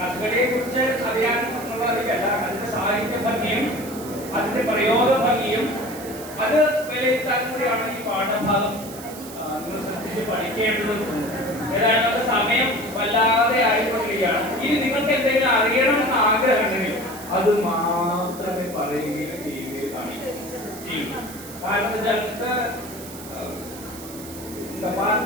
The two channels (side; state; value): right; noise; hiss, 15 dB below the sound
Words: കുറിച്ച് അറിയാൻ എന്നുള്ളതല്ല, അതിന്റെ സാഹിത്യ ഭംഗിയും അതിന്റെ പ്രയോഗ ഭംഗിയും അത് വിലയിരുത്താൻ കൂടിയാണ് ഈ പാഠഭാഗം നിങ്ങൾ ശ്രദ്ധിച്ച് പഠിക്കേണ്ടത്. ഏതായാലും അത് സമയം വല്ലാതെ ആയിക്കൊണ്ടിരിക്കുകയാണ്. ഇനി നിങ്ങൾക്ക് എന്തെങ്കിലും അറിയണമെന്ന് ആഗ്രഹമുണ്ടെങ്കിൽ അത് മാത്രമേ പറയുകയും ചെയ്യുകയും കാണിക്കൂ. കാരണം